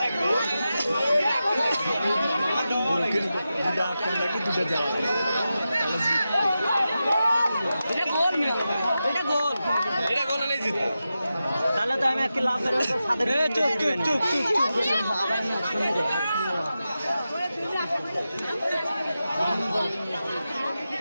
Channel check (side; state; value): both; inverted; correlation -0.91